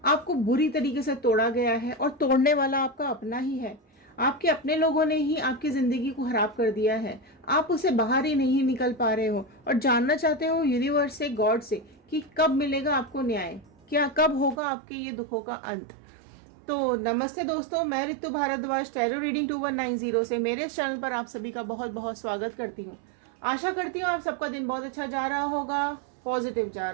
आपको बुरी तरीके से तोड़ा गया है और तोड़ने वाला आपका अपना ही है। आपके अपने लोगों ने ही आपकी ज़िंदगी को खराब कर दिया है। आप उससे बाहर ही नहीं निकल पा रहे हो और जानना चाहते हो यूनिवर्स से, गॉड से, कि कब मिलेगा आपको न्याय, क्या कब होगा आपके ये दुखों का अंत। तो नमस्ते दोस्तों, मैं ऋतु भारद्वाज टैरो रीडिंग 2190 से मेरे इस चैनल पर आप सभी का बहुत बहुत स्वागत करती हूँ। आशा करती हूँ आप सबका दिन बहुत अच्छा जा रहा होगा, पॉजिटिव जा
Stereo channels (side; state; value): left; drops out; at 14.6 s